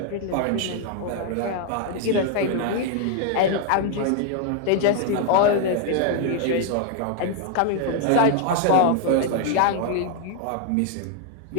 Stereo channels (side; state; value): both; different; correlation 0.00